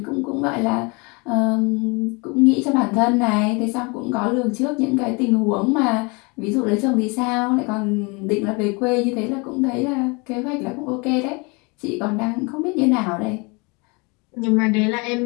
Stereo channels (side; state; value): right; quieter; 29.3 dB